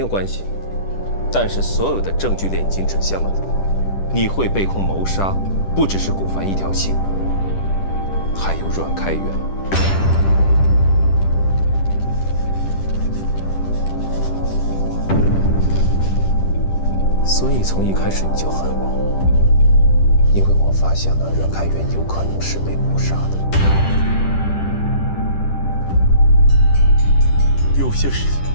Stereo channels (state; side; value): late; right; 10 ms